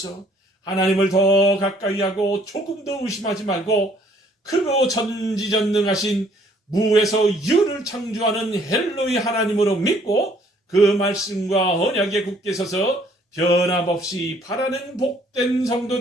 하나님을 더 가까이 하고 조금 더 의심하지 말고 크고 전지전능하신 무에서 유를 창조하는 헬로의 하나님으로 믿고 그 말씀과 언약에 굳게 서서 변함없이 바라는 복된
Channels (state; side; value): normal; both; correlation 0.62